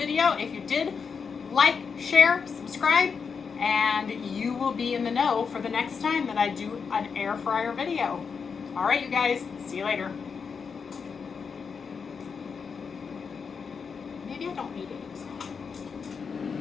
If you did, like, share, subscribe, and you will be in the know for the next time that I do an air fryer video. All right, you guys, see you later. Maybe I don't need eggs.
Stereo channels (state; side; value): quieter; right; 5.8 dB